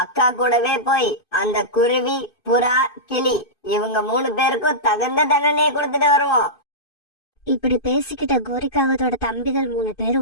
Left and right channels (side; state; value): right; late; 2.5 ms